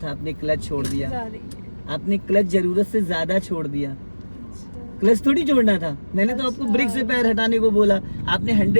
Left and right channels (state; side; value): inverted; both; correlation -1.00